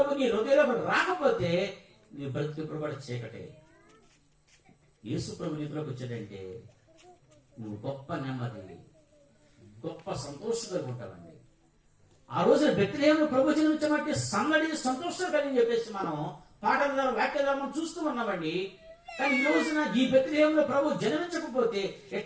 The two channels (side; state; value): both; identical; correlation 1.00